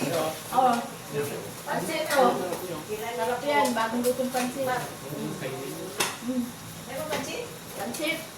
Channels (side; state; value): right; noise; hum, 29 dB below the sound